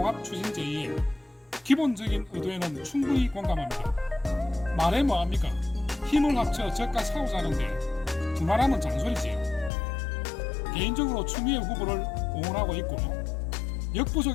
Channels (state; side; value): drops out; right; at 9.7 s